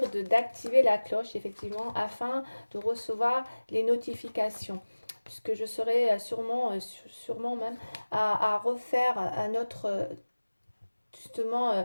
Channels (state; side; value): inverted; both; correlation -1.00